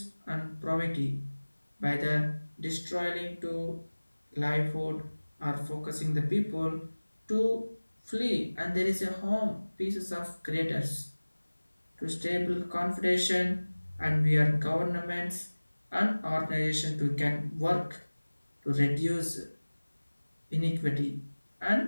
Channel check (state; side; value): inverted; both; correlation -1.00